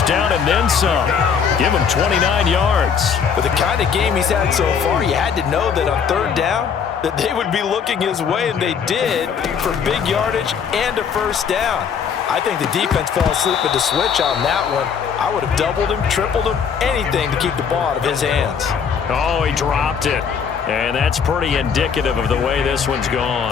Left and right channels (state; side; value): quieter; right; 6.8 dB